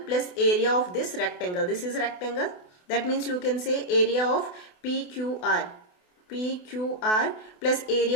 plus area of this rectangle. This is rectangle. That means you can say area of PQR plus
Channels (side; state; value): right; late; 28 ms